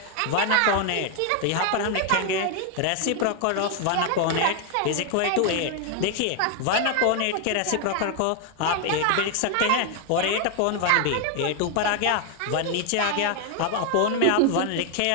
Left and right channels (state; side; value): different; both; correlation 0.01